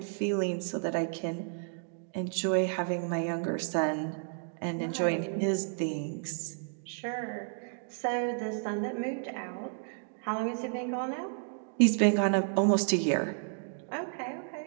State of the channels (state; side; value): silent; left; 56 dB below the other